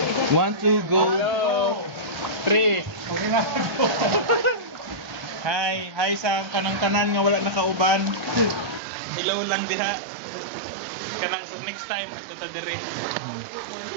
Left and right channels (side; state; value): left; drops out; at 8.8 s